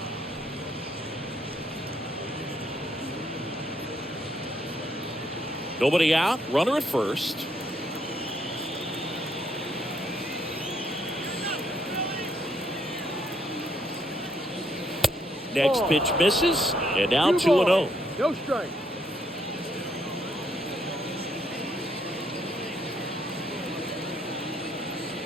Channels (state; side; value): normal; both; correlation 0.72